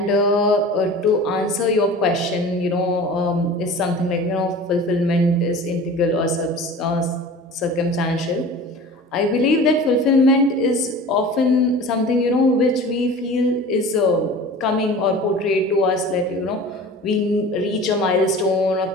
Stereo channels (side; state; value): both; normal; correlation 0.39